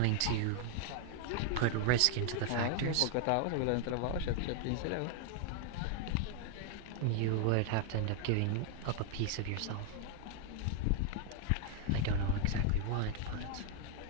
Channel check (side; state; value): both; different; correlation 0.00